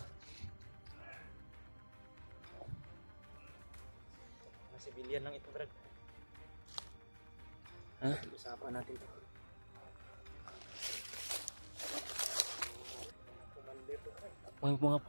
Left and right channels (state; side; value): inverted; both; correlation -1.00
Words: Mga sibilyan lang ito, Brad. Ha? Usapan natin ito. Commander to, Brad. May mga